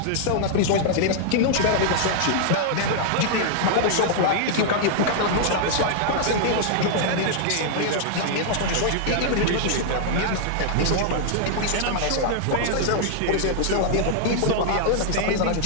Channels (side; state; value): both; different; correlation -0.01